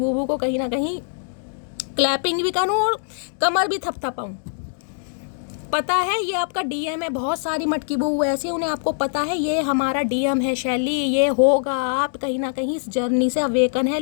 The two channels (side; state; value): right; silent; digital silence